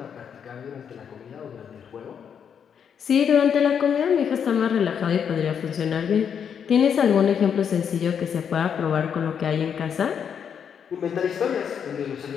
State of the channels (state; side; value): quieter; right; 7.7 dB